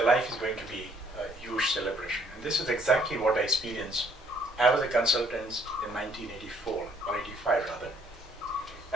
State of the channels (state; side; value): normal; both; correlation 0.65